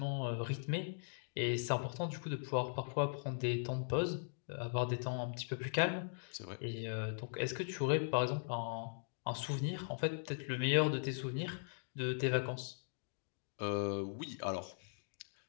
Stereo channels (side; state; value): right; silent; digital silence